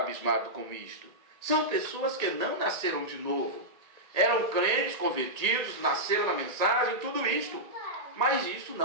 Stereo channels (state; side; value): late; left; 1.8 ms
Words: com isto. São pessoas que não nasceram de novo. Eram crentes, convertidos, nasceram na mensagem, tudo isto. Mas isso